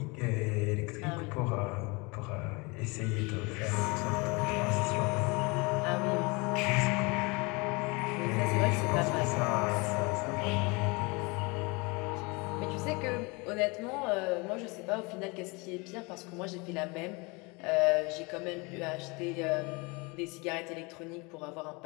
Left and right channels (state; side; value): quieter; right; 27.5 dB